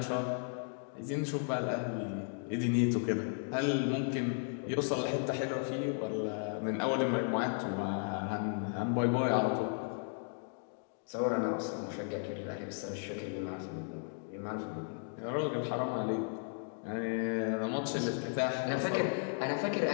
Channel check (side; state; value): right; silent; 54 dB below the other